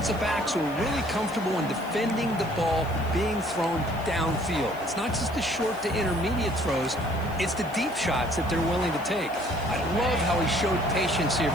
backs who are really comfortable in defending the ball being thrown downfield. It's not just the short to intermediate throws, it's the deep shots that they're willing to take. I love how he showed patience here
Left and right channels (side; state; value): left; noise; hiss, 22 dB below the sound